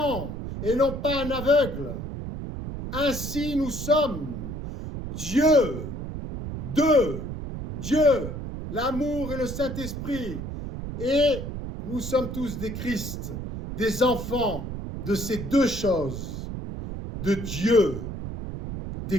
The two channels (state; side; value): noise; right; rumble, 7 dB below the sound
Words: et non pas un aveugle. Ainsi nous sommes. Dieu, Dieu, l'amour et le Saint-Esprit. Et nous sommes tous des Christ, des enfants de ces deux choses, de Dieu,